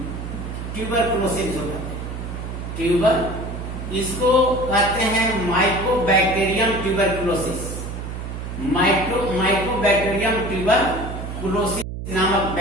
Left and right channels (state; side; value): noise; right; hum, 7 dB below the sound